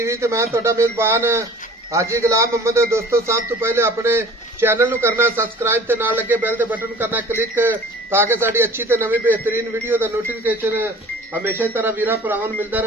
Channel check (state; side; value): normal; both; correlation 0.45